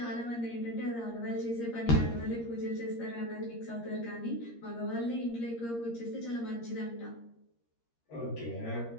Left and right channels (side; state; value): right; late; 13 ms